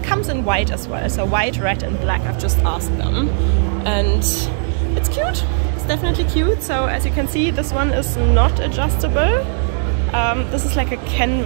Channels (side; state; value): left; silent; 67 dB below the other